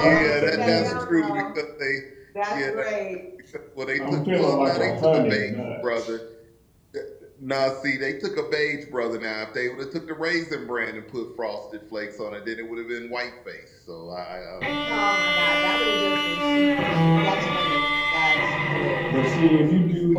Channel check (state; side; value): identical; both; correlation 1.00